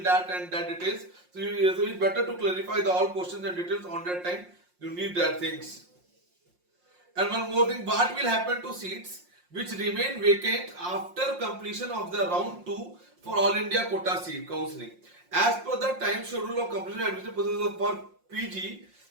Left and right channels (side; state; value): left; late; 5.6 ms